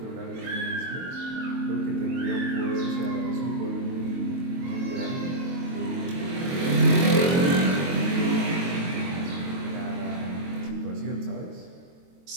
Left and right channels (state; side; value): late; left; 23 ms